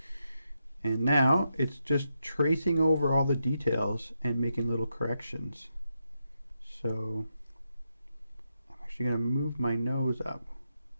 And now it's just tracing over all the details and making little corrections. So I'm actually going to move my nose up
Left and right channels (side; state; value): both; inverted; correlation -0.84